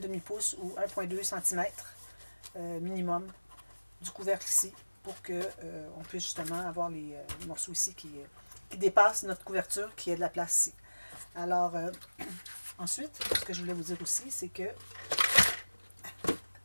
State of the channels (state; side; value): inverted; both; correlation -1.00